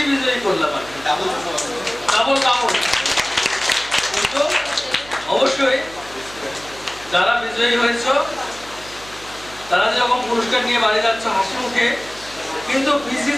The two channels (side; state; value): right; noise; hum, 20 dB below the sound